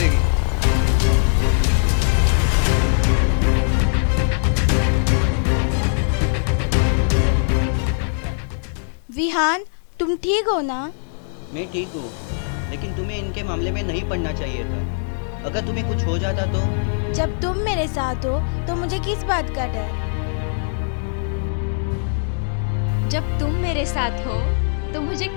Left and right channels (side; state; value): right; silent; 65 dB below the other